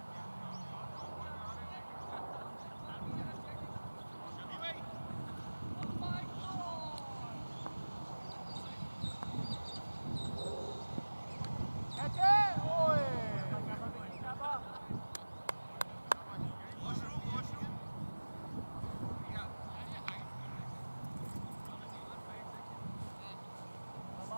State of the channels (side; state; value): both; inverted; correlation -1.00